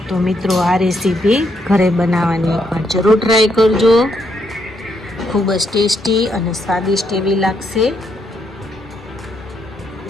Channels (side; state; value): both; normal; correlation 0.76